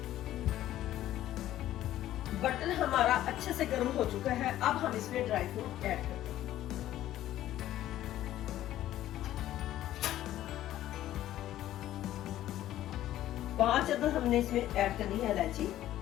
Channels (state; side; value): quieter; right; 13.3 dB